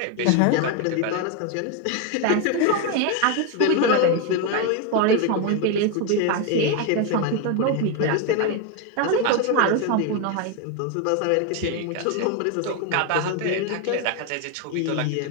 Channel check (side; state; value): both; different; correlation 0.02